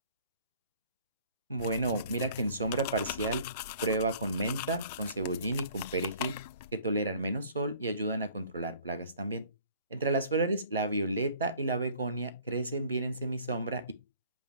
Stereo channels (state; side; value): inverted; both; correlation -0.53